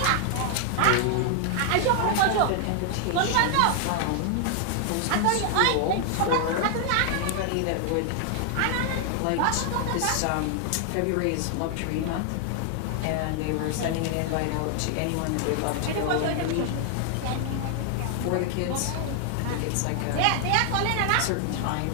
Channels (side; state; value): both; different; correlation 0.00